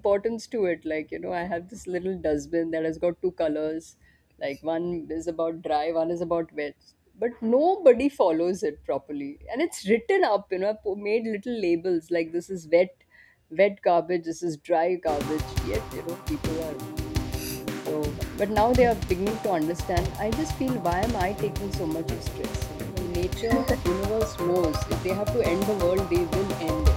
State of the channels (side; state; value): both; identical; correlation 1.00